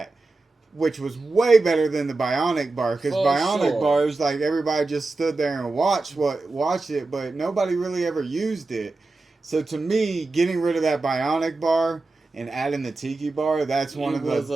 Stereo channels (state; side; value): quieter; left; 3.4 dB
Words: which was way better than the Bionic Bar, because Bionic Bar is like everybody just stood there and watched it, but nobody really ever used it. So to me, getting rid of that Bionic Bar and adding the Tiki Bar, that's one of